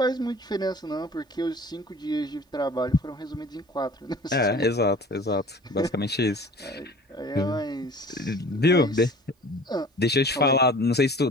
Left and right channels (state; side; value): normal; both; correlation 0.45